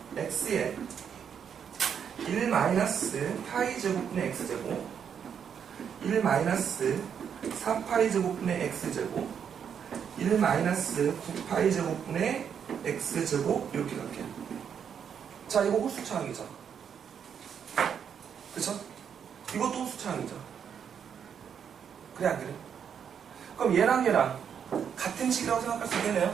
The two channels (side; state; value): left; quieter; 7.8 dB